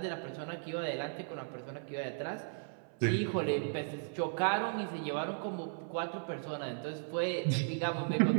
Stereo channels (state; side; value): silent; left; 54 dB below the other